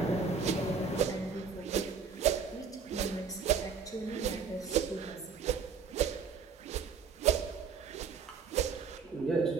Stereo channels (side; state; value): left; quieter; 5.8 dB